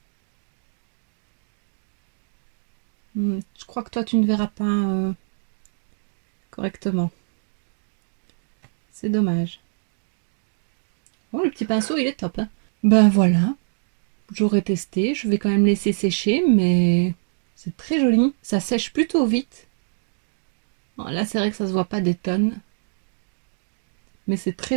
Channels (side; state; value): left; silent; digital silence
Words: Je crois que toi, tu ne verras pas correctement. C'est dommage. Oh, le petit pinceau, il est top, hein. Ben voilà. J'aurais testé. Je vais quand même laisser sécher, mais c'est très joli. Ça sèche plutôt vite. Bon, là, c'est vrai que ça se voit pas des tonnes. Mais c'est très